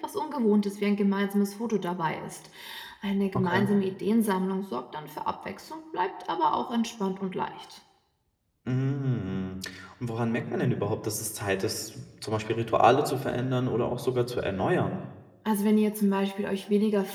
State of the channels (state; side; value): identical; both; correlation 1.00